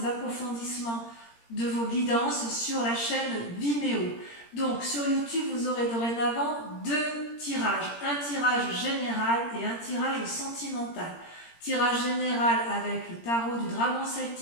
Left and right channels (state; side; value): late; right; 17 ms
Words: approfondissements de vos guidances sur la chaîne Vimeo. Donc, sur YouTube, vous aurez dorénavant 2 tirages. Un tirage général et un tirage sentimental. Tirage général avec le tarot du dragon